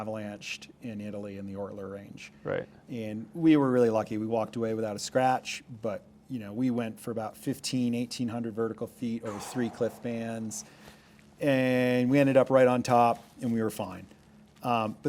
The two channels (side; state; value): both; identical; correlation 1.00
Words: in Italy in the Ortler Range. Right. And we were really lucky. We walked away without a scratch, but we went for about 1,800 vertical feet over 3 cliff bands, and we ended up right on top, and we were fine.